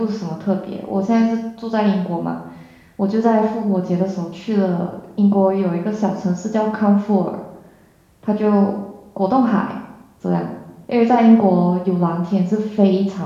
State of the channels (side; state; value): both; identical; correlation 1.00